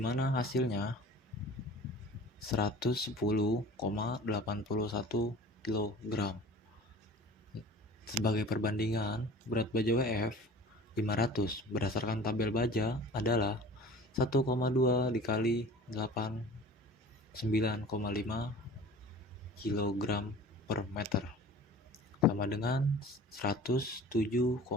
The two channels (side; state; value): both; normal; correlation 0.43